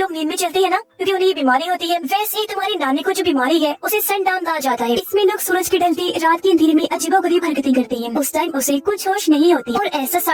नींद में चलते हैं ना, क्योंकि उन्हें ये बीमारी होती है, वैसे ही तुम्हारी नानी को जो बीमारी है उसे सनडाउन कहा जाता है। इसमें लोग सूरज के ढलते रात के अंधेरे में अजीबोगरीब हरकतें करते हैं। उस टाइम उसे कुछ होश नहीं होती और ऐसा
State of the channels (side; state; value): both; identical; correlation 1.00